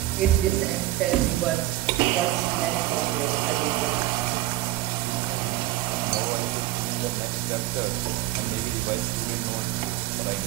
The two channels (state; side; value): quieter; left; 15.3 dB